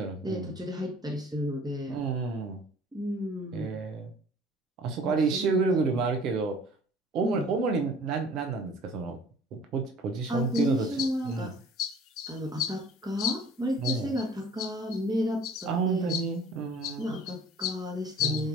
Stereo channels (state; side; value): normal; both; correlation 0.49